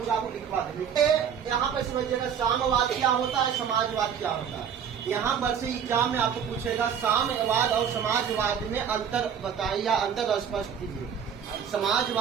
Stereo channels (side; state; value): left; quieter; 7.8 dB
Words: आपको लिखवा देंगे। यहाँ पे समझिएगा साम्यवाद क्या होता है, समाजवाद क्या होता है। यहाँ पर से एग्जाम में आपको पूछेगा साम्यवाद और समाजवाद में अंतर बताइए या अंतर स्पष्ट कीजिए।